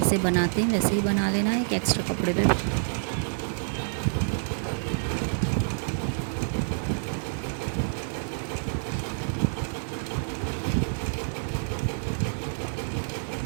बनाते हैं वैसे ही बना लेना है, एक एक्स्ट्रा कपड़े पे।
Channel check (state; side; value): silent; left; digital silence